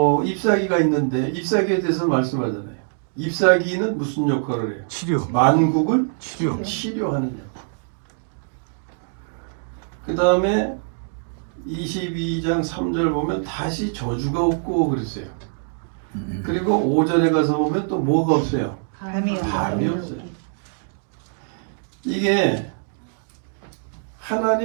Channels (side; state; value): left; silent; digital silence